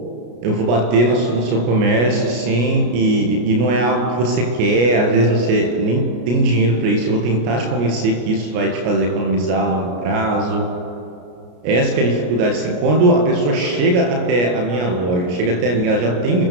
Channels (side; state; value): left; late; 33 ms